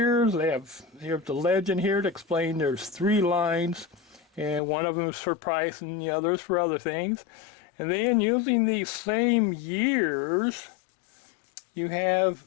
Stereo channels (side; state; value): right; drops out; at 4.6 s